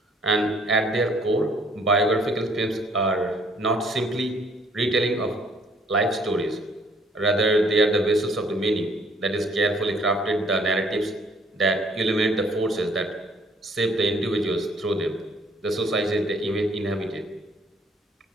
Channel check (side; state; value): both; normal; correlation 0.61